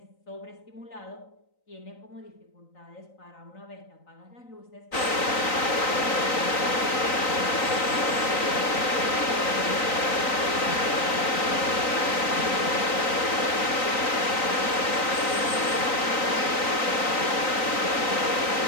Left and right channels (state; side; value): late; right; 3.9 ms